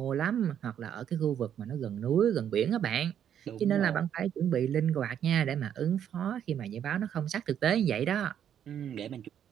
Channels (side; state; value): left; quieter; 9.4 dB